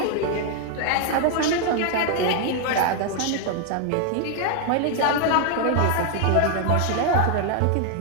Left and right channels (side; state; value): both; different; correlation 0.00